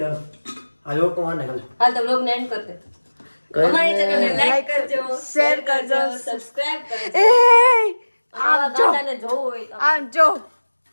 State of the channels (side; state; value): both; inverted; correlation -1.00